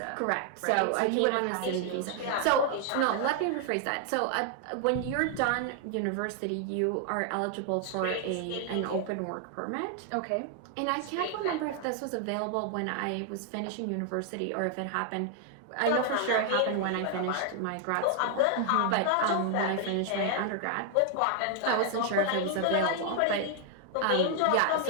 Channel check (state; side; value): different; both; correlation 0.00